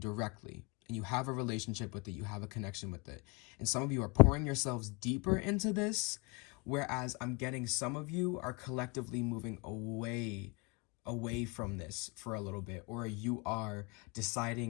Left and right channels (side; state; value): right; quieter; 28.7 dB